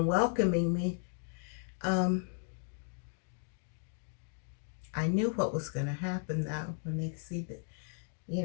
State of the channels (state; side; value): silent; right; 54 dB below the other